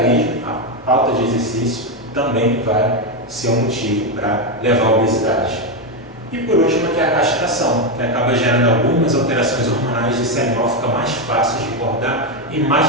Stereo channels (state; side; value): normal; both; correlation 0.07